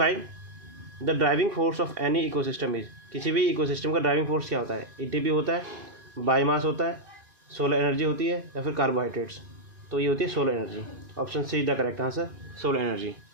the driving force of any ecosystem is. किसी भी इकोसिस्टम का ड्राइविंग फोर्स क्या होता है? ATP होता है, बायोमास होता है, सोलर एनर्जी होती है या फिर कार्बोहाइड्रेट्स। तो ये होती है solar energy. Option C the correct answer, solar energy.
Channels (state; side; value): late; left; 2.5 ms